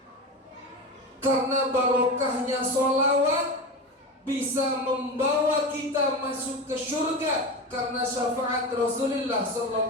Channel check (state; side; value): normal; both; correlation 0.24